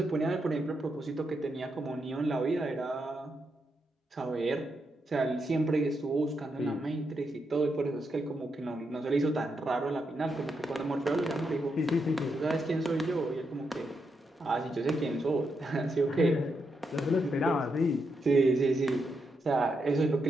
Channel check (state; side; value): normal; both; correlation 0.83